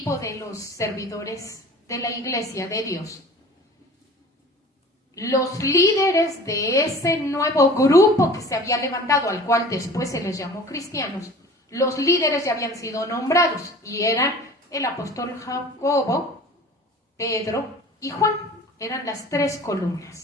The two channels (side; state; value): both; normal; correlation 0.43